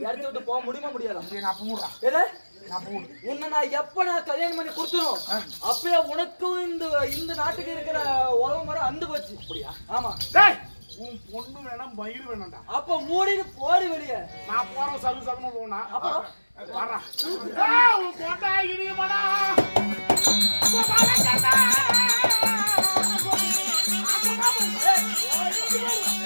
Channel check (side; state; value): both; inverted; correlation -1.00